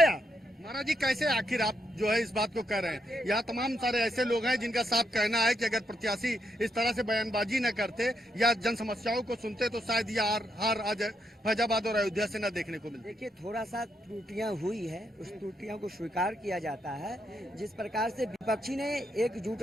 महाराज जी, कैसे आखिर आप जो है इस बात को कह रहे हैं? यहाँ तमाम सारे ऐसे लोग हैं जिनका साफ कहना है कि अगर प्रत्याशी इस तरह से बयानबाजी न करते या जन समस्याओं को सुनते तो शायद ये हार आज फैजाबाद और अयोध्या से न देखने को मिलती। देखिए, थोड़ा सा त्रुटियां हुई है, उस त्रुटियों को स्वीकार किया जाता है। जिस प्रकार से विपक्षी ने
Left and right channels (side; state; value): both; normal; correlation 0.79